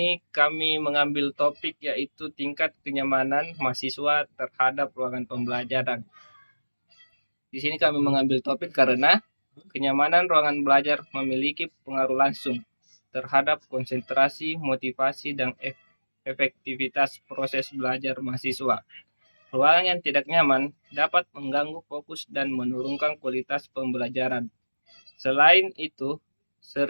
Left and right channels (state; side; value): inverted; both; correlation -1.00